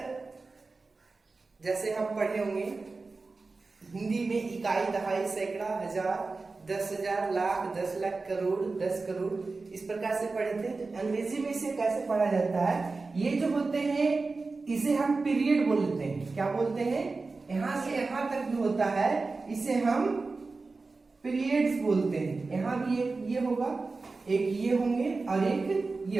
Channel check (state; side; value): quieter; left; 3.9 dB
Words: जैसे हम पढ़े होंगे हिंदी में इकाई, दहाई, सैकड़ा, हजार, 10,000, लाख, 10 लाख, करोड़, 10 करोड़, इस प्रकार से पढ़े थे। तो अंग्रेजी में इसे कैसे पढ़ा जाता है, ये जो होते हैं इसे हम पीरियड बोलते हैं। क्या बोलते हैं? यहां से यहां तक जो होता है इसे हम पीरियड्स बोलते हैं। यहां भी एक ये होगा, एक ये होंगे और एक ये